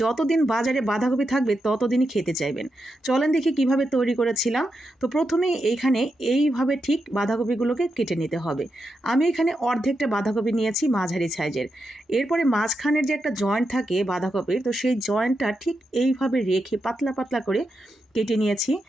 যতদিন বাজারে বাঁধাকপি থাকবে ততদিনই খেতে চাইবেন। চলেন দেখি কিভাবে তৈরি করেছিলাম। তো প্রথমেই এইখানে এইভাবে ঠিক বাঁধাকপিগুলোকে কেটে নিতে হবে। আমি এখানে অর্ধেকটা বাঁধাকপি নিয়েছি মাঝারি সাইজের। এরপরে মাঝখানে যে একটা জয়েন্ট থাকে বাঁধাকপির, তো সেই জয়েন্টটা ঠিক এইভাবে রেখে পাতলা পাতলা করে কেটে নিয়েছি,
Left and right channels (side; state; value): both; normal; correlation 0.86